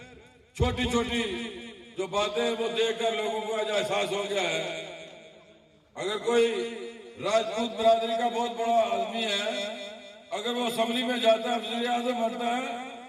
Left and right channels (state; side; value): identical; both; correlation 1.00